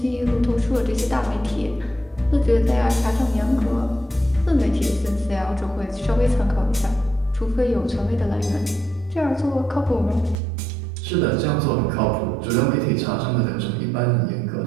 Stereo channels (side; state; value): left; drops out; at 10.4 s